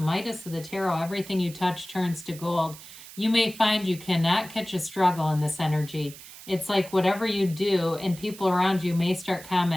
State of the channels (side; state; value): right; noise; hiss, 16 dB below the sound